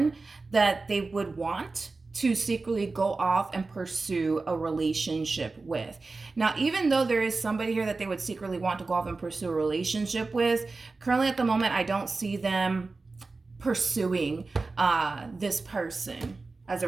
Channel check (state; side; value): quieter; left; 3.8 dB